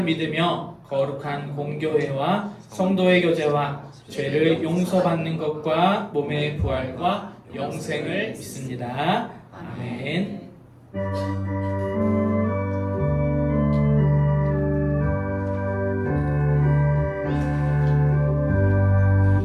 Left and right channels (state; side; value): identical; both; correlation 1.00